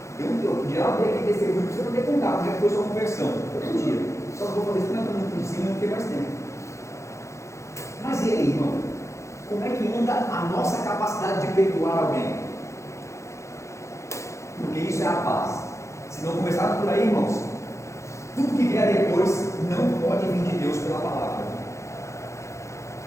Eu podia abrir aqui testemunho para você poder contar, como é que foi sua conversão. Todo dia. Só vou fazer isso porque eu por cima, não tem mais tempo. Mas e aí, irmão? Como é que anda a nossa capacidade de perdoar alguém? Porque isso é a paz. Se não começar por aí, irmãos, tudo que vier depois não pode vir de Deus pela palavra.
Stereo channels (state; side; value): late; right; 0.14 ms